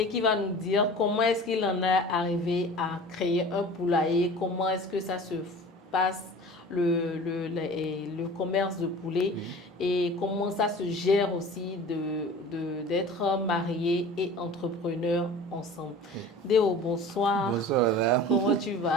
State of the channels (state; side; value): normal; both; correlation 0.40